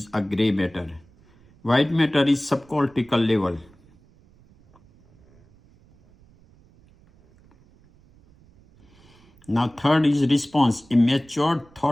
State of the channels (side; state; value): right; noise; rumble, 29 dB below the sound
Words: a gray matter. White matter is subcortical level. Now third is response, a matured,